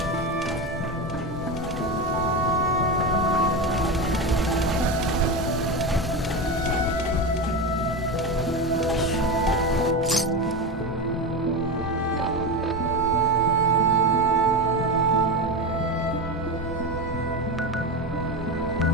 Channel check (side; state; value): both; normal; correlation 0.19